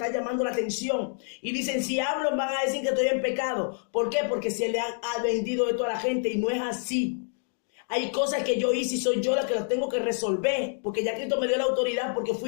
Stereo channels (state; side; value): silent; right; 60 dB below the other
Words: llamando la atención. Y dicen, si hablo van a decir que estoy en pecado. ¿Por qué? Porque se le ha vendido esto a la gente y no es así. Hay cosas que yo hice y soy yo la que las tengo que resolver, porque ya Cristo me dio la autoridad, porque